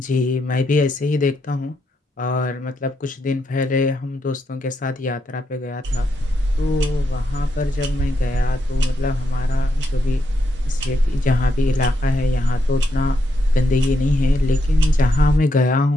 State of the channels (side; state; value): both; normal; correlation 0.80